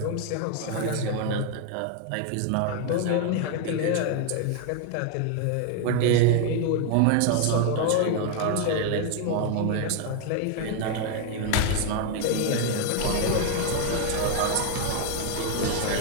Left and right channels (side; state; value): both; different; correlation 0.00